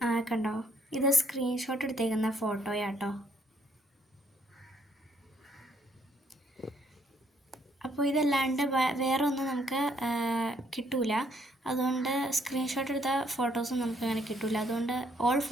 കണ്ടോ, ഇത് സ്ക്രീൻഷോട്ട് എടുത്തേക്കുന്ന ഫോട്ടോയാട്ടോ. അപ്പോൾ ഇതല്ലാണ്ട് വേറെ ഒന്നും നമുക്ക് കിട്ടൂല. അതുകൊണ്ട് സ്ക്രീൻഷോട്ട് എടുത്ത ഫോട്ടോസും നമുക്ക് അങ്ങനെ കിട്ടൂല. അതുകൊണ്ട് ഓൾ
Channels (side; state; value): both; normal; correlation 0.68